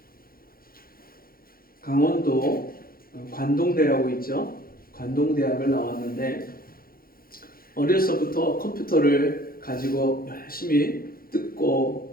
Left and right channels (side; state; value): right; late; 0.42 ms